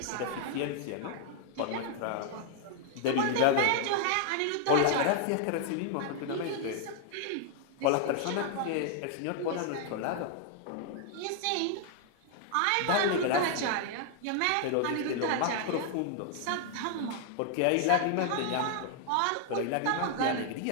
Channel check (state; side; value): different; both; correlation 0.00